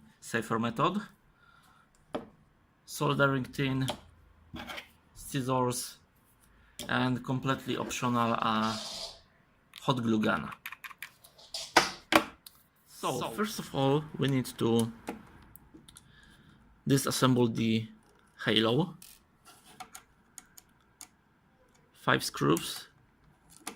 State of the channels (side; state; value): both; identical; correlation 1.00